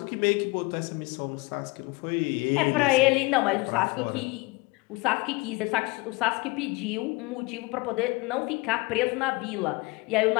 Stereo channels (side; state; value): right; quieter; 25.1 dB